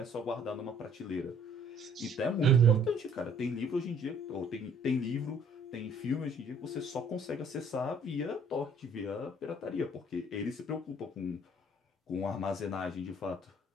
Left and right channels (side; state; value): both; normal; correlation 0.58